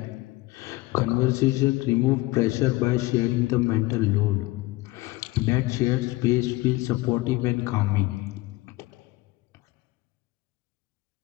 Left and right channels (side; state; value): right; quieter; 20.3 dB